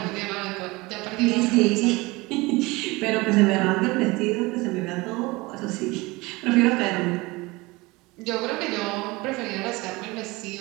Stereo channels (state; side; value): quieter; left; 22.9 dB